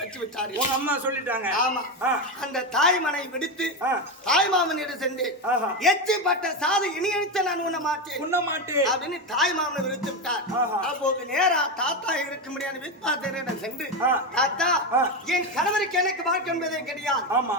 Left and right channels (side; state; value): both; normal; correlation 0.13